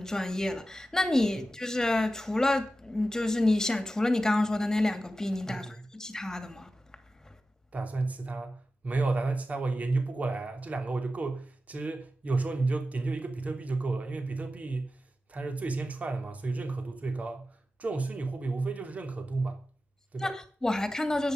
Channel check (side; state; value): both; normal; correlation 0.93